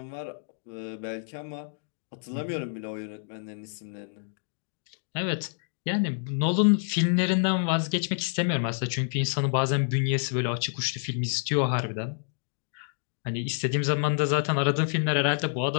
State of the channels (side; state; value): right; silent; digital silence